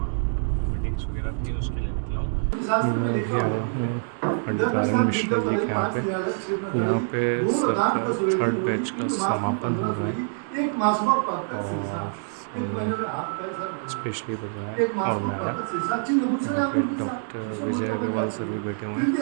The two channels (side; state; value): left; silent; digital silence